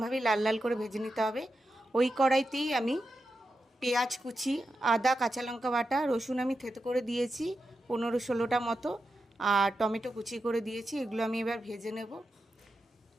লাল লাল করে ভেজে নিতে হবে। ওই কড়াইতেই আমি পেঁয়াজ কুচি, আদা, কাঁচা লঙ্কা বাটা, রসুন আমি থেতো করে দিয়েছি 15-16টা মতো, আর টমেটো কুচি করে দিয়েছি। এগুলো আমি এবার ভেজে নেব।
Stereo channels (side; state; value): both; normal; correlation 0.89